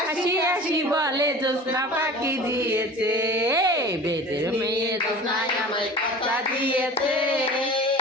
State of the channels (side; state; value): both; normal; correlation 0.39